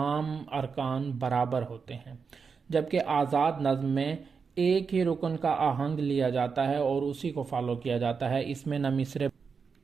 ارکان برابر ہوتے ہیں۔ جبکہ آزاد نظم میں ایک ہی رکن کا آہنگ لیا جاتا ہے اور اسی کو فالو کیا جاتا ہے، اس میں نہ مصرے۔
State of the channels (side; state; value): left; quieter; 5.5 dB